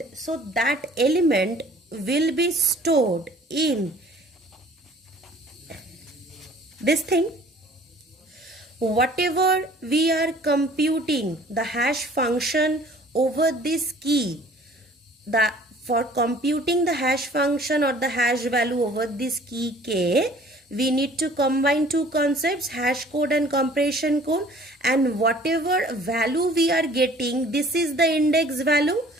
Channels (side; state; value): both; normal; correlation 0.52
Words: so that element will be stored in this thing. Whatever we are computing the hash function over this key, for computing the hash function or the hash value over this key k, we need to combine two concepts, hash code and compression code, and whatever value we are getting, this is the index value.